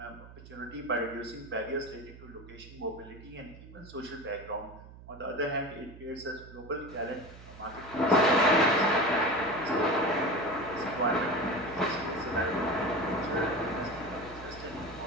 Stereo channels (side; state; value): right; noise; hum, 17 dB below the sound